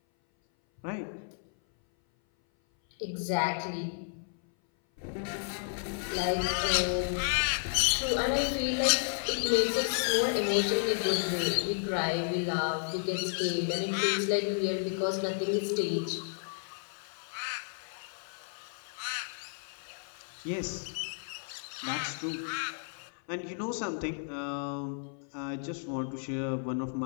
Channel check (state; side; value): silent; right; 56 dB below the other